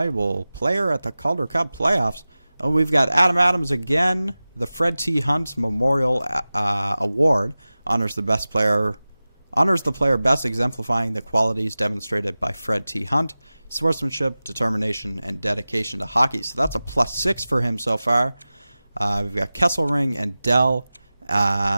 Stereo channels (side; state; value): both; inverted; correlation -0.97